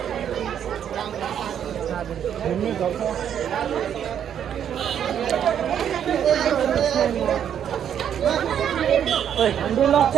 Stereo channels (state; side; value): quieter; left; 9.1 dB